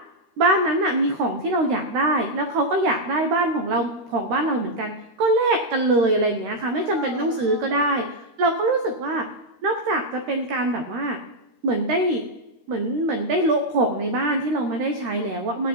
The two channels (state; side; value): late; left; 13 ms